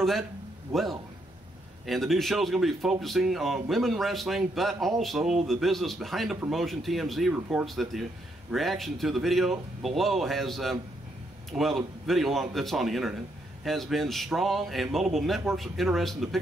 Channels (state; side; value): normal; both; correlation 0.76